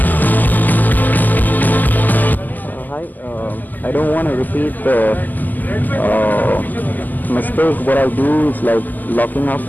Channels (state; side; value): late; right; 0.084 ms